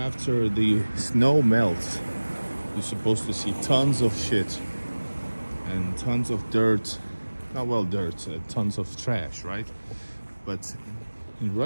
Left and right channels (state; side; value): inverted; both; correlation -1.00